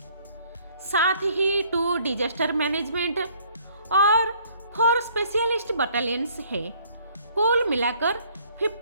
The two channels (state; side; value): inverted; both; correlation -0.61